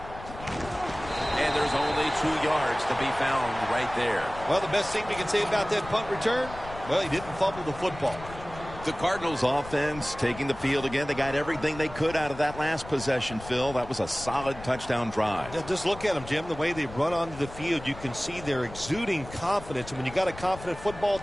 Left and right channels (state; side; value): noise; left; rumble, 14 dB below the sound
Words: And there's only 2 yards to be found right there. Well, the best thing we can say about that punt return, well, he didn't fumble the football. The Cardinals offense taking the field again. They got everything they could out of that last possession, Phil. That was a solid touchdown drive. Yeah, just look at them, Jim. The way they run onto the field, you can see they're exuding confidence. And when you got a confident football